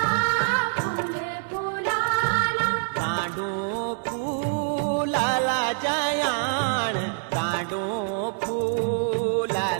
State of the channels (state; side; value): silent; left; digital silence